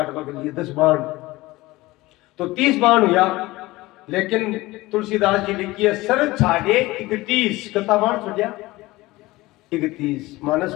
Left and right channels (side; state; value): right; quieter; 19.7 dB